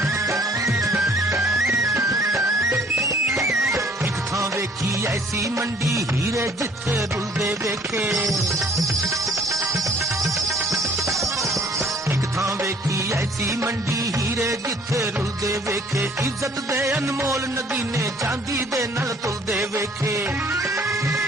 ऐसी मंडी हीरे जिथे रुलदे वेखे, एक थां वेखी ऐसी मंडी हीरे जिथे रुलदे वेखे। इज्जत दे अनमोल नगीने चांदी दे नल तुलदे वेखे।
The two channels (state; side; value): normal; both; correlation 0.57